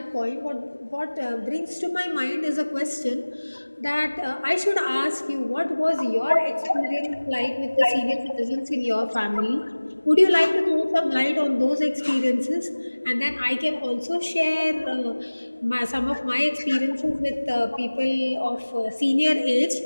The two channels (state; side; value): inverted; both; correlation -1.00